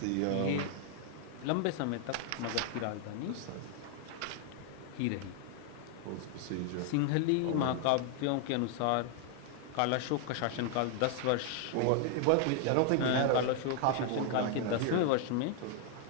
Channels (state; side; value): different; both; correlation 0.00